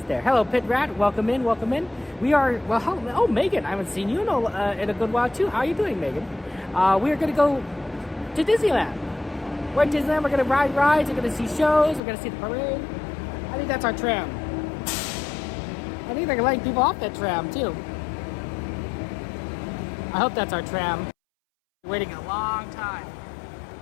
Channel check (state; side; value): drops out; right; at 12.0 s